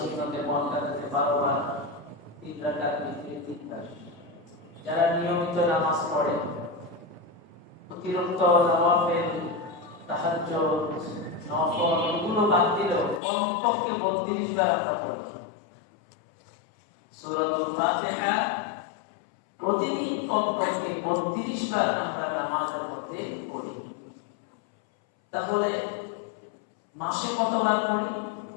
মুআক্কাদাতে 12 বার, 3 রাকাত বিতরে 3 বার। যারা নিয়মিত নামাজ পড়ে, অতিরিক্ত নওয়াফিল, তাহাজ্জুদ, নফল এগুলো বাদ দিলেও কমপক্ষে 32 বার আমরা পড়ি সূরাতুল ফাতিহা। প্রতিদিন কমপক্ষে 32 বার আমরা নামাজের মধ্যে পড়ি। তাহলে মাসে কতবার পড়ি?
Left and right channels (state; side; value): drops out; right; at 13.2 s